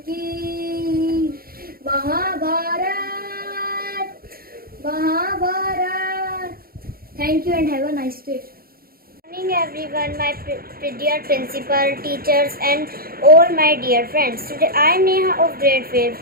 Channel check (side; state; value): left; late; 0.43 ms